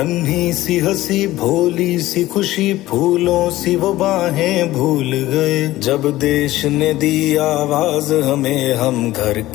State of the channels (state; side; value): quieter; right; 16.4 dB